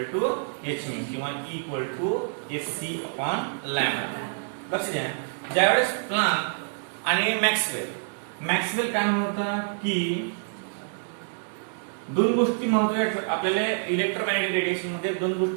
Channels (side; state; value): left; silent; digital silence